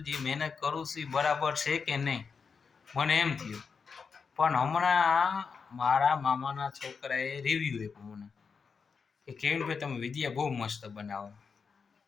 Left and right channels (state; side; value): quieter; right; 5.6 dB